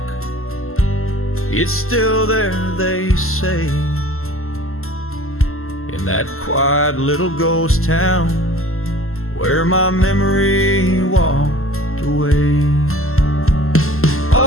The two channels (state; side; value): late; right; 0.62 ms